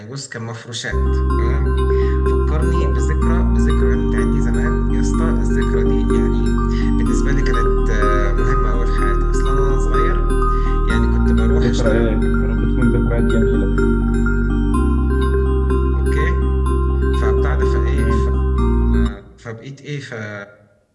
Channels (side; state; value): both; identical; correlation 1.00